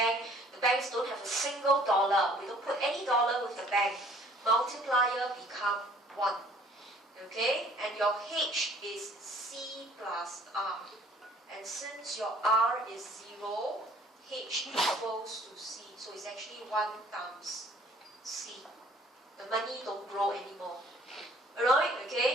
don't have a single dollar, we don't put any dollar with the bank, multiplier become 1. Okay, and your H is C plus R. And since your R is 0, H equals to C. So it's actually 1 times C. The money don't grow anymore. Alright,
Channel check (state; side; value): normal; both; correlation 0.56